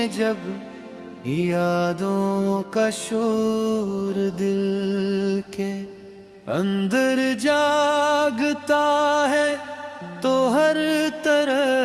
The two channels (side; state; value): both; identical; correlation 1.00